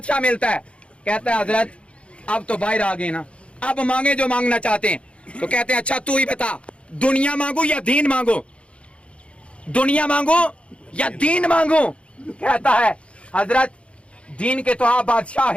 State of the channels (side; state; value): right; late; 0.060 ms